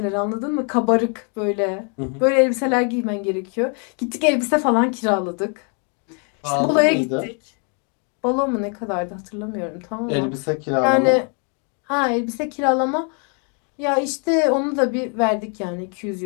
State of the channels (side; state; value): right; quieter; 39.6 dB